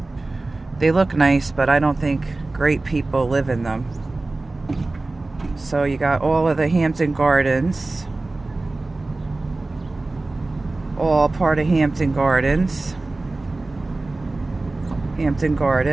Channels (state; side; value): quieter; left; 3.1 dB